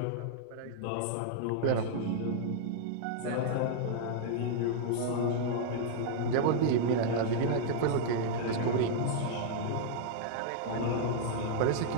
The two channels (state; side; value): different; both; correlation -0.01